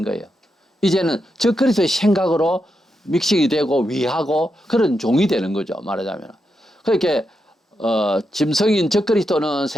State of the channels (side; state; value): both; normal; correlation 0.85